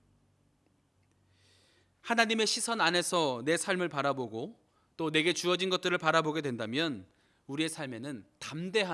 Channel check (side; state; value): both; identical; correlation 1.00